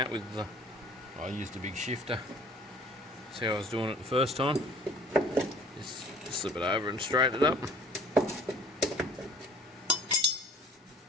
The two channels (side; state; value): both; normal; correlation 0.52